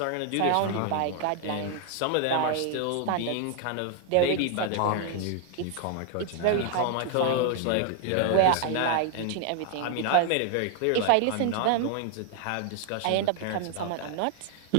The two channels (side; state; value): both; different; correlation 0.00